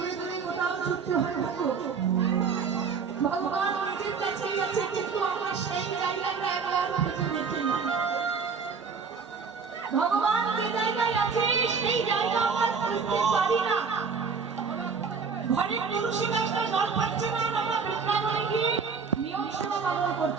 দূরে কোথাও ছুটতে হয়। ভগবান নিজের কাছেই আছে, কিন্তু আমরা সেই জায়গাটা একবার খুঁজে দেখি না। ভগবান যে জায়গায় আছে সেই জায়গা আমরা খুঁজতে পারি না। ঘরের তুলসী গাছটা জল পাচ্ছে না, আমরা বৃন্দাবনে গিয়ে নিয়ম সেবা পালন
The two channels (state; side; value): quieter; left; 5.5 dB